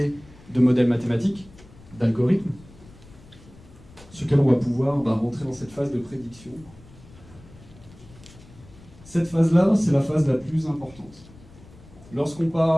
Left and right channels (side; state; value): left; noise; rumble, 22 dB below the sound